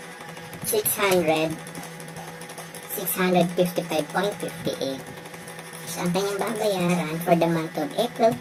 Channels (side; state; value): both; identical; correlation 1.00